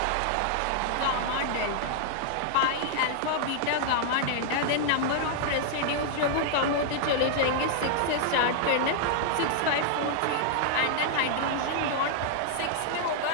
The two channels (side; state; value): both; different; correlation -0.01